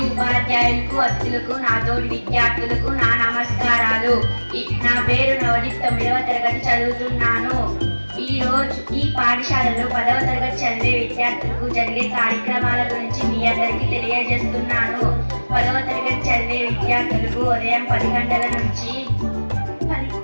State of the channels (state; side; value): inverted; both; correlation -1.00